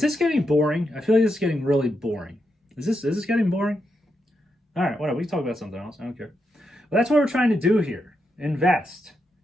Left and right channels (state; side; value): normal; both; correlation 0.84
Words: this getting boring? I feel like this is getting really boring. Is this getting boring? All right, whatever. We can talk about something else. I don't care. But that's what we're trying to do here. Invest.